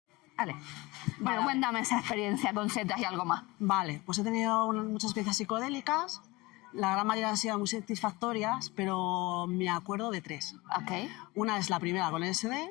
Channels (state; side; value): quieter; right; 22.2 dB